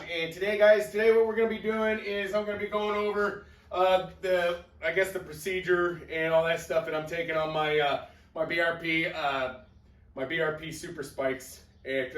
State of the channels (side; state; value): both; identical; correlation 1.00